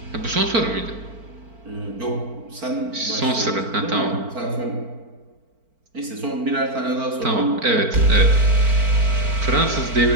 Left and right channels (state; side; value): late; left; 4.5 ms